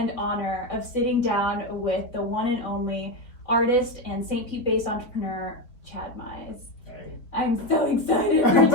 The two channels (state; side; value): late; right; 4.3 ms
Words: honor of sitting down with the one and only artist and St. Pete-based entrepreneur, Chad Mize. Hey. I'm so excited for